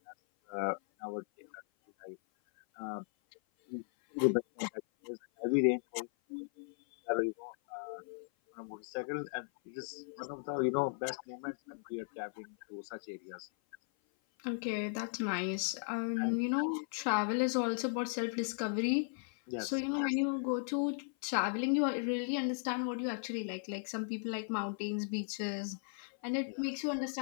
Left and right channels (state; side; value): silent; right; 53 dB below the other